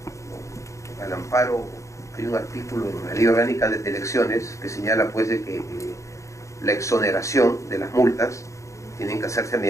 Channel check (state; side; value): late; right; 0.15 ms